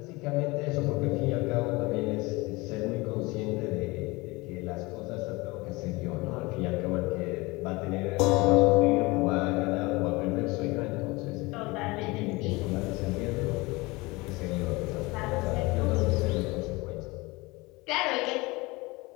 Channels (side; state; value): right; quieter; 23.4 dB